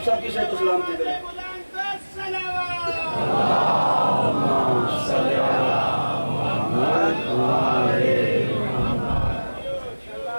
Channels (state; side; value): inverted; both; correlation -1.00